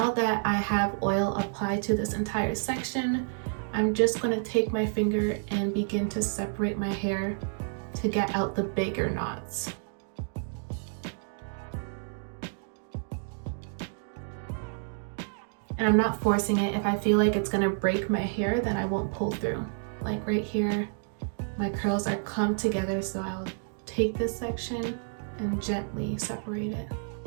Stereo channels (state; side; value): silent; left; digital silence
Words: that I have oil applied to this entire section, I'm just gonna take my finger and begin to separate my hair to get out the bigger knots. And I'm not forcing it. If I feel like it's gonna break my hair, then I won't pull through. Like right here, my curls are clumped together, so I'll take this section and gently separate it.